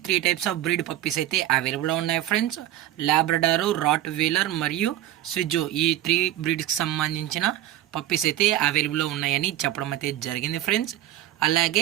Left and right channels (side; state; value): left; quieter; 13.5 dB